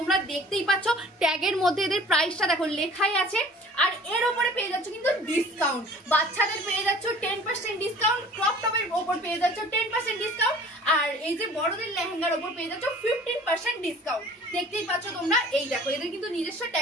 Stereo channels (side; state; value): both; normal; correlation 0.48